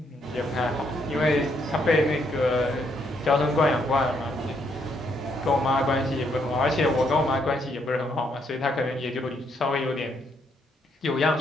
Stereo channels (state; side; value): normal; both; correlation 0.73